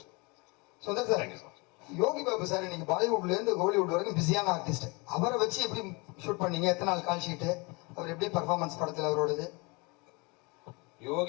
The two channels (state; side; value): quieter; right; 28.1 dB